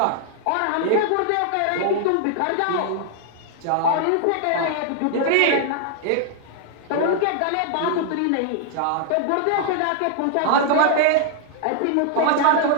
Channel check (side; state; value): both; different; correlation 0.00